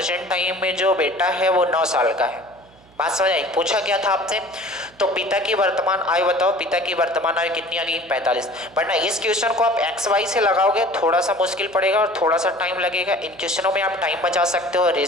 टाइम में जो बेटा है वो 9 साल का है। बात समझ आई? पूछा क्या था आपसे? तो पिता की वर्तमान आयु बताओ। पिता की वर्तमान आयु कितनी आ गई? 45। बट ना इस क्वेश्चन को आप एक्स वाई से लगाओगे थोड़ा सा मुश्किल पड़ेगा और थोड़ा सा टाइम लगेगा। इन क्वेश्चनों में आप टाइम बचा सकते हो,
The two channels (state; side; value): noise; right; hum, 28 dB below the sound